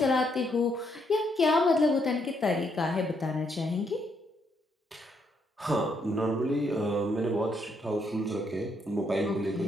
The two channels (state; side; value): normal; both; correlation 0.74